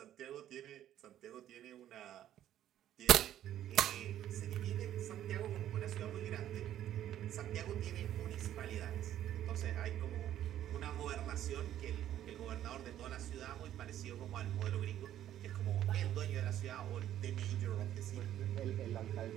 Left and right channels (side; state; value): left; quieter; 11.7 dB